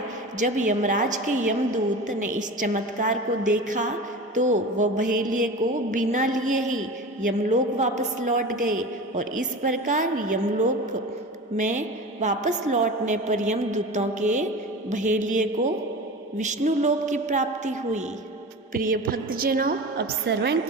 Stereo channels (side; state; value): both; normal; correlation 0.32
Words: जब यमराज के यमदूत ने इस चमत्कार को देखा तो वह बहेलिये को बिना लिए ही यमलोक वापस लौट गए और इस प्रकार यमलोक में वापस लौटने पर यमदूतों के बहेलिये को विष्णु लोक की प्राप्ति हुई। प्रिय भक्तजनों, अब श्रवण